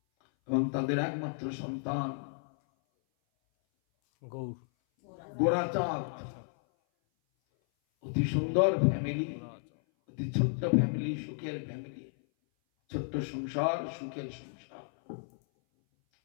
এবং তাদের একমাত্র সন্তান গোরাচাঁদ, অতি সুন্দর ফ্যামিলি, অতি ছোট্ট ফ্যামিলি, সুখের ফ্যামিলি, ছোট্ট সংসার, সুখের সংসার,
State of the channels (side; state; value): right; silent; 56 dB below the other